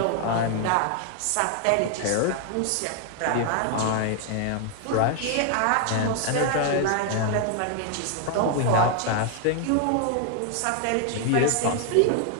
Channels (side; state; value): both; different; correlation 0.00